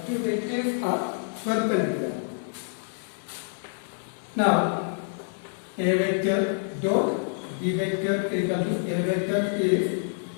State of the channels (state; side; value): silent; right; 60 dB below the other